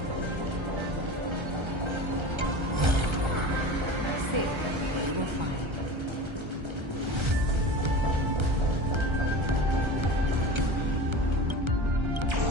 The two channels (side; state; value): left; late; 1.3 ms